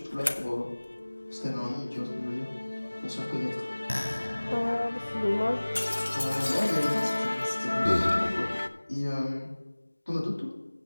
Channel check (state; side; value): inverted; both; correlation -1.00